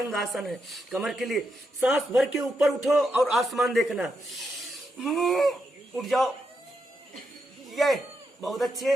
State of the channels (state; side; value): normal; both; correlation 0.83